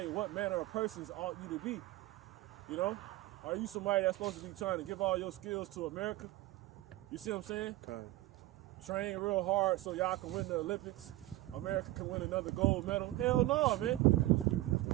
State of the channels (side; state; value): left; quieter; 17.5 dB